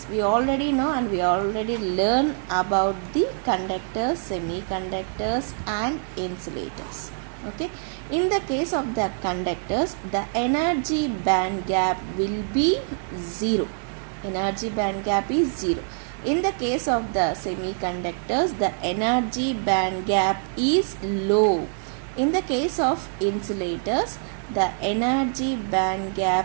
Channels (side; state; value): left; silent; 62 dB below the other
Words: we already know, and we already learn about the conductors, semiconductors and insulators. Okay, in the case of the conductors, the energy band gap will be 0. Energy band gap is 0. In the case of the semiconductors, the energy band gap is low. In the case of insulators, the energy band gap